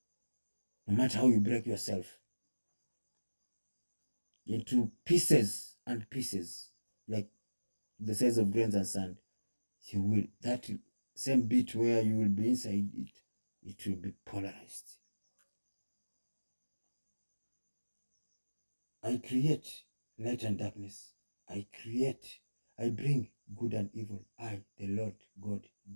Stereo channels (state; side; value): inverted; both; correlation -1.00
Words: No matter how you break yourself into pieces and pieces, like the size of grains and sand, you will, that same bit where you will be inside it, it will be polarized. I create light and darkness. I bring good and evil. I, the Lord God,